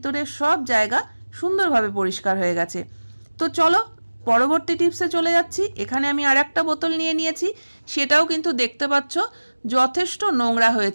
সব জায়গা সুন্দরভাবে পরিষ্কার হয়ে গেছে। তো চলো পরবর্তী টিপসে চলে যাচ্ছি। এখানে আমি আর একটা বোতল নিয়ে নিয়েছি, সেটাও কিন্তু দেখতে পাচ্ছ যথেষ্ট নোংরা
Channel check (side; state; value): both; inverted; correlation -1.00